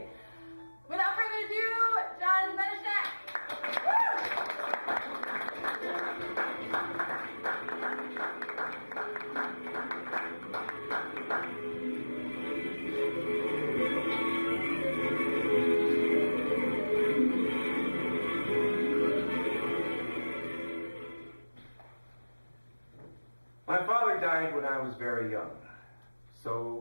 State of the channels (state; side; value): inverted; both; correlation -1.00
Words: Without further ado, John Benischek. My father died when I was very young,